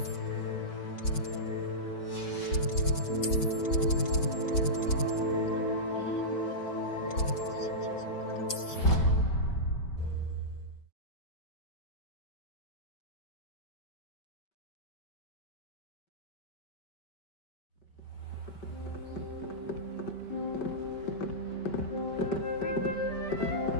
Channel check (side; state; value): right; late; 5.2 ms